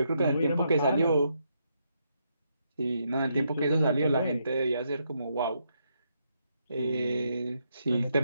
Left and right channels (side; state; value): both; inverted; correlation -0.78